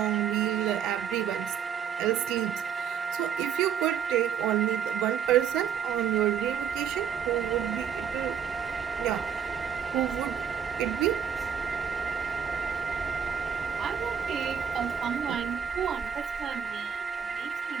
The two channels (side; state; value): left; quieter; 7.9 dB